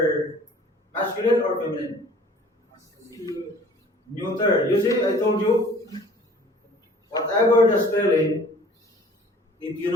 masculine or feminine? Neuter. You see, I told you, whatever the spelling, if you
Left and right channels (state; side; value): normal; both; correlation 0.50